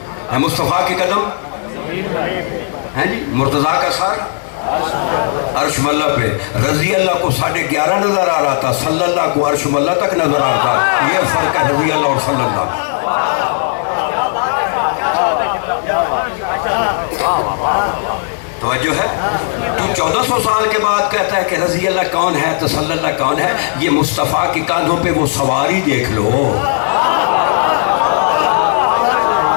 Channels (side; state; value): right; silent; digital silence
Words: مصطفیٰ کے قدم ہیں جی، مرتضیٰ کا سر عرش ملہ پہ، رضی اللہ کو 11.5 نظر آ رہا تھا، صلی اللہ کو عرش ملہ تک نظر آ رہا تھا۔ یہ فرق ہے رضی اللہ اور صلی اللہ۔ توجہ ہے؟ تو 1400 سال کے بعد کہتا ہے کہ رضی اللہ کون ہے تو صلی اللہ کون ہے؟ یہ مصطفیٰ کی کاندھوں پہ وہ سواری دیکھ لو۔